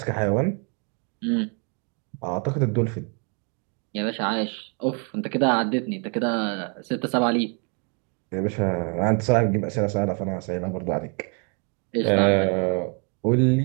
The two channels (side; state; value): left; quieter; 35.8 dB